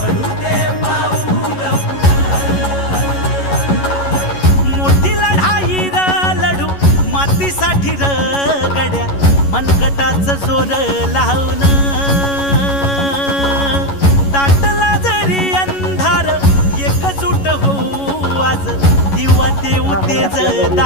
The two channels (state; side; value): late; right; 11 ms